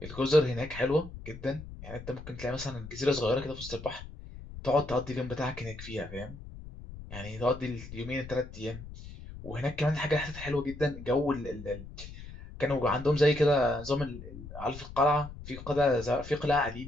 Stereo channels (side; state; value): left; noise; rumble, 13 dB below the sound